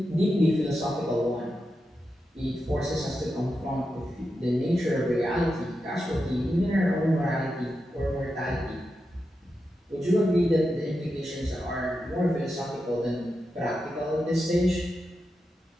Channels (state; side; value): normal; both; correlation 0.88